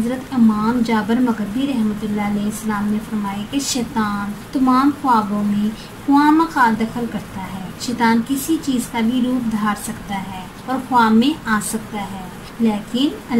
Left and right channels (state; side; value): identical; both; correlation 1.00